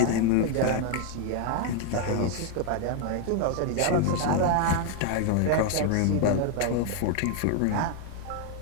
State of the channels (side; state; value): both; different; correlation 0.01